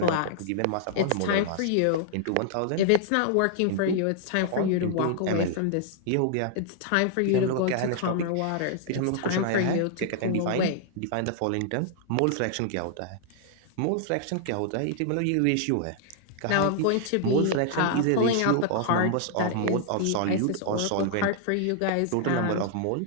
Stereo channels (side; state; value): both; different; correlation -0.01